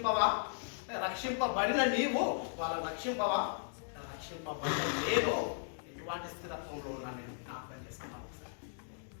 రక్షింపబడిన నీవు వాళ్ళని రక్షింపవా? రక్షింపబడిన నేను ఎటువంటి స్థిరత్వంలో ఉన్నాను నేను జ్ఞాపకం చేస్తున్నాను.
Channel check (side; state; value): right; silent; digital silence